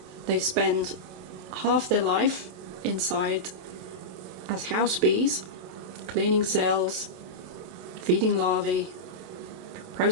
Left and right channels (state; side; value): late; left; 27 ms